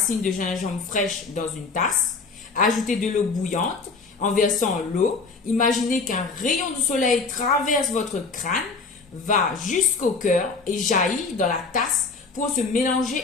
de gingembre fraîches dans une tasse, ajouter de l'eau bouillante, en versant l'eau, imaginez qu'un rayon de soleil traverse votre crâne, va jusqu'au cœur et jaillit dans la tasse pour se mélanger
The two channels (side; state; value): right; quieter; 4.4 dB